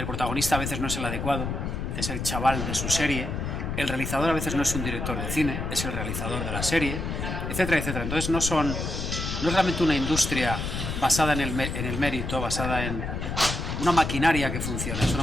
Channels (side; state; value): left; noise; rumble, 4 dB below the sound